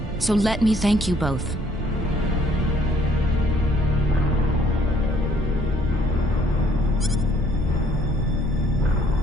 so let me thank you both.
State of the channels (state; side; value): noise; right; rumble, 8 dB below the sound